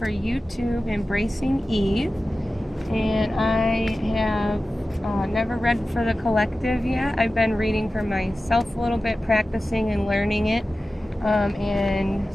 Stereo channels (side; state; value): both; normal; correlation 0.95